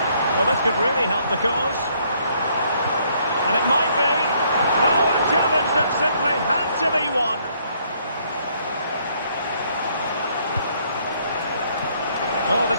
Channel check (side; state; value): both; inverted; correlation -0.67